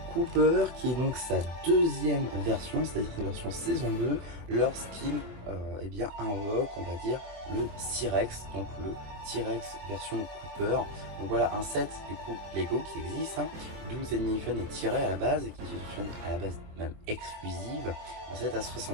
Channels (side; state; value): left; late; 24 ms